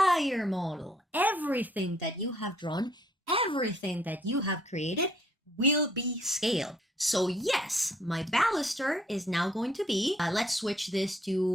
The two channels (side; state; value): both; normal; correlation 0.64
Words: model. Everything that you have drawn, everything that you have created will be scaled. So yes, my baluster is now going to be, let's switch this